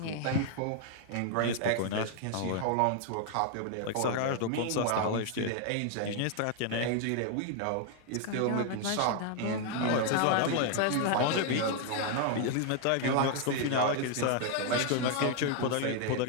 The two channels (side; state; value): both; different; correlation 0.00